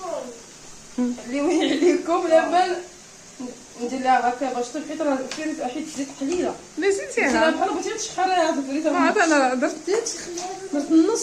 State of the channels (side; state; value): both; identical; correlation 1.00